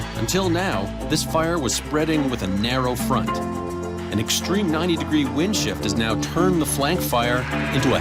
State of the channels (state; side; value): identical; both; correlation 1.00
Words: Until now, this fire was spreading with a narrow front. An extreme 90-degree wind shift has now turned the flank fire into a